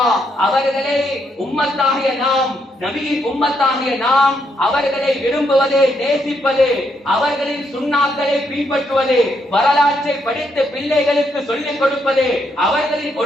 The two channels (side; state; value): both; normal; correlation 0.76